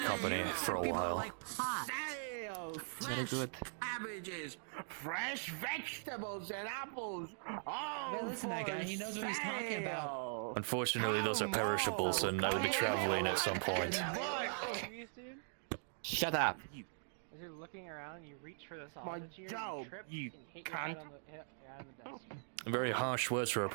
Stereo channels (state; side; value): silent; left; digital silence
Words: company for a while. Sale, Very good. cabbages, fresh vegetables and apples. Hey, listen, that guy, he knows what he's talking about. Unfortunately, those are perishables, and I will be traveling at some point. Shut up. As you're looking around, you reach for the My sausage here, job, you trip, you and hit your head cunt. on the, hit your head on the desk. Very harsh words for a